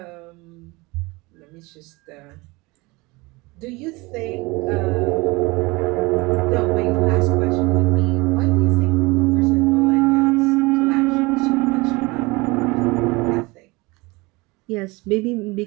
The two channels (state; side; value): quieter; left; 24.0 dB